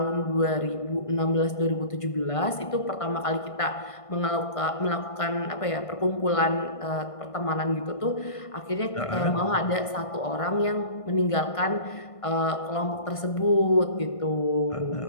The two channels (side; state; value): right; late; 1.5 ms